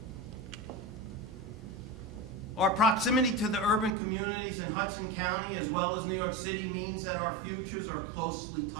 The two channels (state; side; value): drops out; left; at 4.0 s